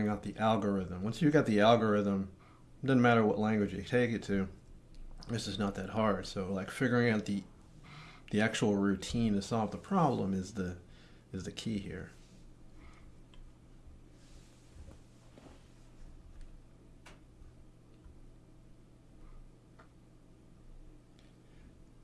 out the algorithm. Once you've got the algorithm, it doesn't matter what language you take it to. This is not that hard. So like figuring out the actual routine to solve the problem is the key here.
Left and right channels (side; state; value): both; identical; correlation 1.00